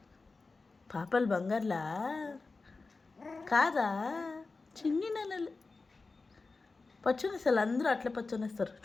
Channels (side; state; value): right; quieter; 3.9 dB